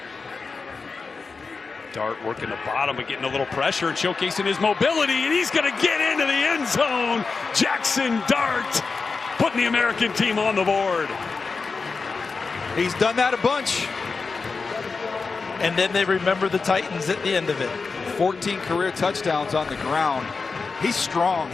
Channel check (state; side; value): quieter; right; 4.5 dB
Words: Dart working the bottom, but getting a little pressure and showcasing his mobility, and he's going to get into the end zone. Jackson Dart putting the American team on the board. He's done that a bunch. And then they remember the Titans at the end of it. 14 career touchdowns on the ground. He's strong.